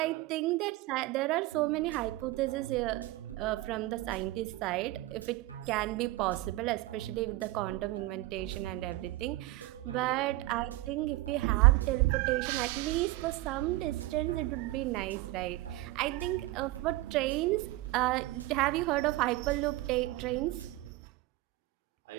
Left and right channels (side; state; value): left; quieter; 18.4 dB